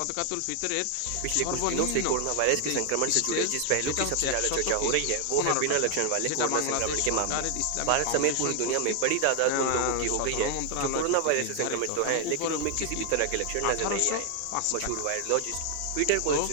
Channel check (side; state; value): both; different; correlation 0.00